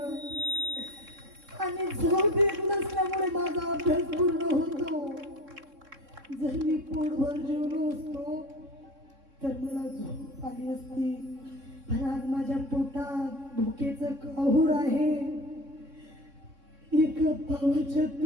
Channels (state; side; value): late; left; 3.6 ms